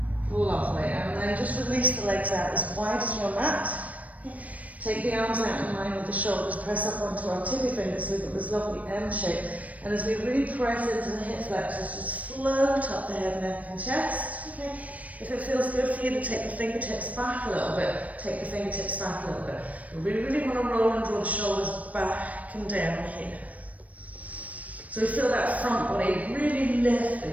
Lovely. And then just release the legs out as wide as your mat. Take the arms out in line with the shoulders, press up onto our tippy fingers so we've got this lovely M shape. And as we really press into the hip flexors, just float up the head, neck and chest. Okay. If it feels good for you to take the fingertips back a little bit, take the fingertips back a little bit. We really want to roll and draw the shoulders back and down here. So we feel that front body really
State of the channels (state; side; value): late; left; 0.069 ms